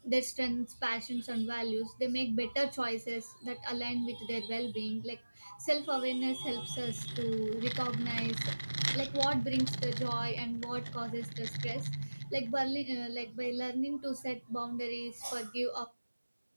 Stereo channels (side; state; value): both; inverted; correlation -1.00